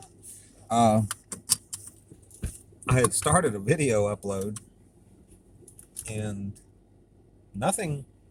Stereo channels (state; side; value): identical; both; correlation 1.00